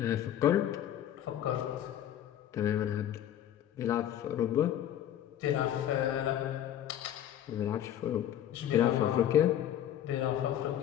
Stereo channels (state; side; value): quieter; right; 11.0 dB